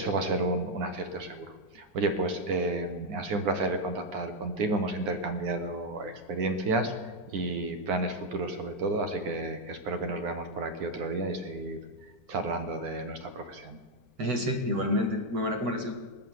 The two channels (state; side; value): late; left; 4.4 ms